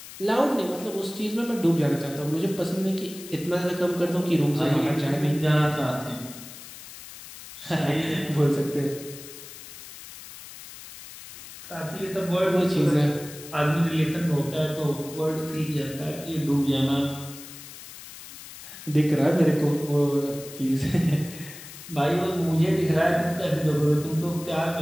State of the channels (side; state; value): left; noise; hiss, 15 dB below the sound